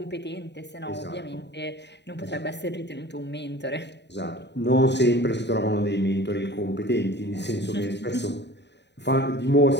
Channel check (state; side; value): late; right; 0.50 ms